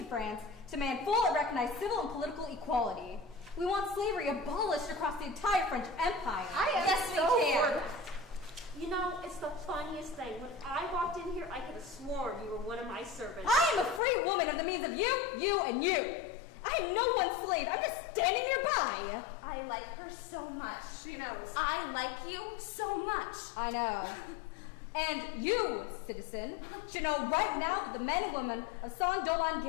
France to demand full and recognized civil and political equality. We want slavery abolished across the entire French Empire. Yes, we can. You know, it's the funniest thing. When I walked in here, I could have sworn you were one of my servants. I am a free woman of the means of you, and you. I am no one's slave. I'm just standing nearby. I like her so much. She knows. I like you so much. I know. And you, citizen, should know right now that the men and women of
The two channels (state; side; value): drops out; right; at 14.0 s